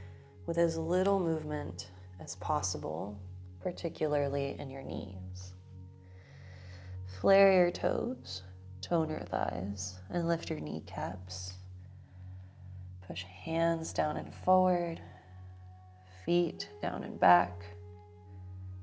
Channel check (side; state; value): both; identical; correlation 1.00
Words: with as little movement as possible, particularly in your knees. Flare your toes, tone your thighs, and lift your kneecaps. Push hands down and forward, feet down and back.